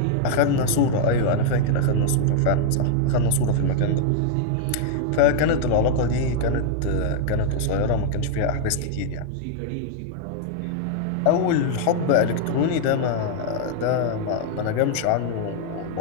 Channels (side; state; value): both; different; correlation 0.00